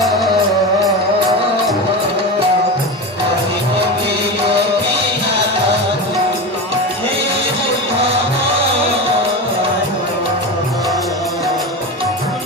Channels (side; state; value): both; normal; correlation 0.23